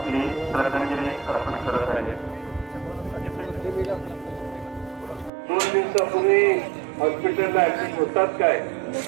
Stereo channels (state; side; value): drops out; left; at 5.3 s